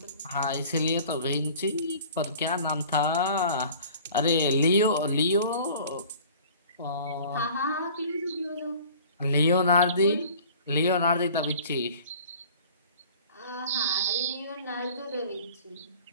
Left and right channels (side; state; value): both; inverted; correlation -0.46